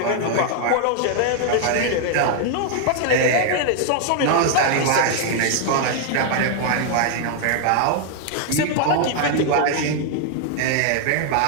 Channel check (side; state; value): both; different; correlation 0.00